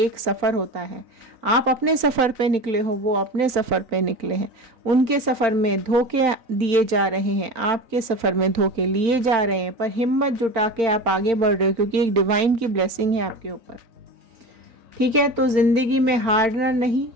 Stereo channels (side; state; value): left; late; 3.9 ms